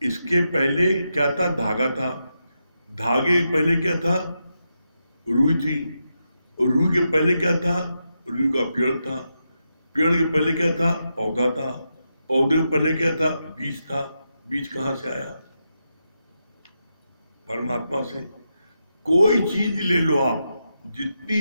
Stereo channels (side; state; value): both; inverted; correlation -0.86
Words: इसके पहले क्या था? धागा था। धागे के पहले क्या था? रुई थी। और रुई के पहले क्या था? रुई का पेड़ था। पेड़ के पहले क्या था? पौधा था। पौधे के पहले क्या था? बीज था। बीज कहाँ से आया? परमात्मा से। कोई चीज ले लो आप, जितनी